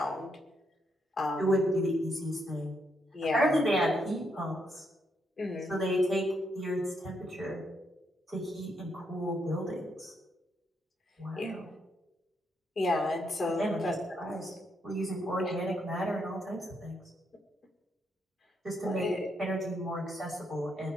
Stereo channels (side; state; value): both; normal; correlation 0.78